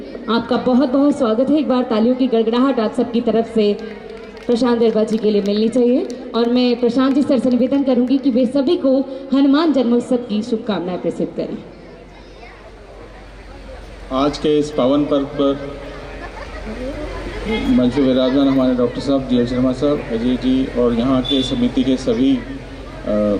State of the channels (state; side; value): identical; both; correlation 1.00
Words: आपका बहुत बहुत स्वागत है। एक बार तालियों की गड़गड़ाहट आप सबकी तरफ से प्रशांत बैरवा जी के लिए मिलनी चाहिए। और मैं प्रशांत जी सर से निवेदन करूंगी कि वे सभी को हनुमान जन्मोत्सव की शुभकामनाएं प्रसिद्ध करें। आज के इस पावन पर्व पर मंच पर विराजमान हमारे डॉक्टर साहब, GL शर्मा साहब, अजय जी और यहाँ के समिति के सभी